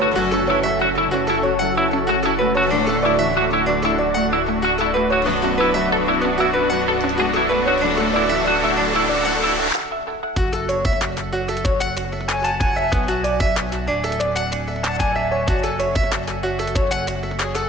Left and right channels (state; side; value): normal; both; correlation 0.51